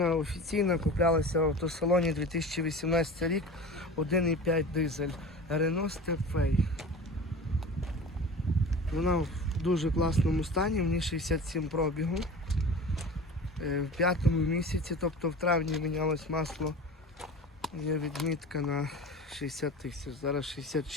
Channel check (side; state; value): both; normal; correlation 0.36